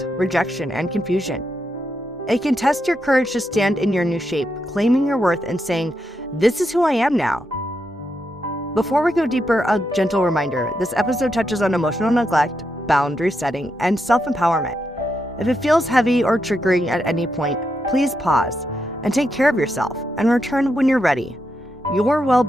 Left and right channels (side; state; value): both; normal; correlation 0.83